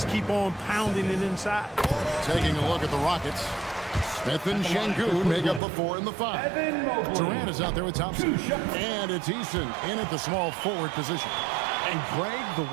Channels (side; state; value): left; drops out; at 5.6 s